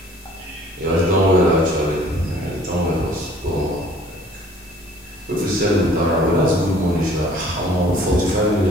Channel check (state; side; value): normal; both; correlation 0.54